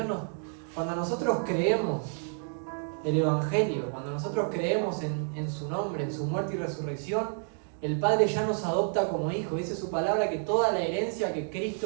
nosotros creemos el Evangelio, cuando nosotros creemos en su nombre, en su muerte y resurrección, el Padre ya nos adopta como hijos. Dice su palabra que toda la herencia que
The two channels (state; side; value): silent; left; 56 dB below the other